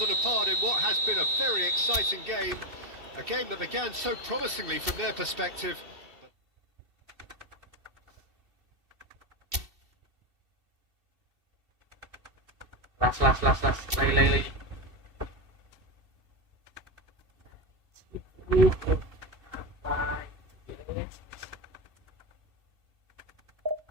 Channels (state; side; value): late; left; 2.7 ms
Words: than a part in what has been a very exciting game. A game that began so promisingly from their perspective. Las. Lagi. Apa?